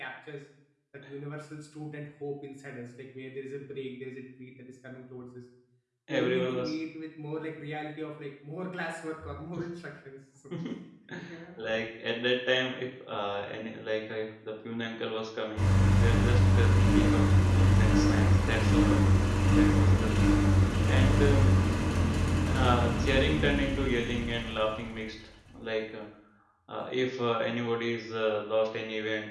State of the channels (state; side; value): identical; both; correlation 1.00